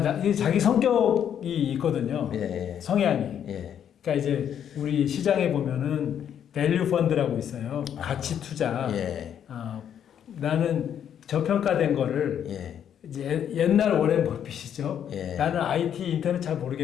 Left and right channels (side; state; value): right; quieter; 9.2 dB